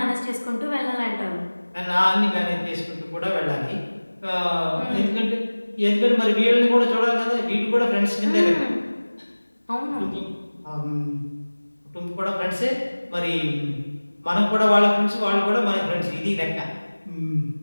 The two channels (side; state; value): both; inverted; correlation -1.00